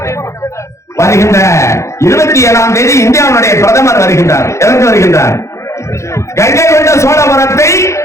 வருகின்ற 27ஆம் தேதி இந்தியாவுடைய பிரதமர் வருகின்றார். எதற்கு வருகின்றார்? கங்கை கொண்ட சோழபுரத்தை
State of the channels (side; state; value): right; late; 0.14 ms